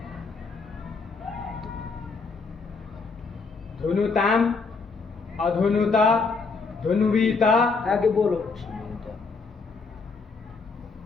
धुनुताम, अधुनुता, धुनुवीता, आगे बोलो।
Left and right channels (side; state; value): right; quieter; 4.5 dB